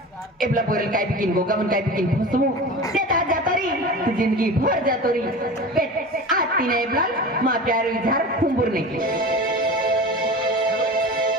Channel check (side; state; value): both; normal; correlation 0.32